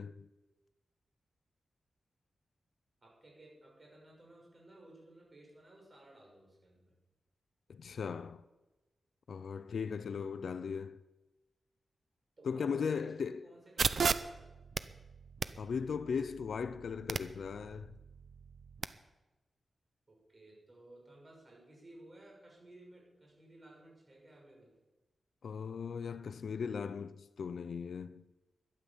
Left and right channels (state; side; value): normal; both; correlation 0.82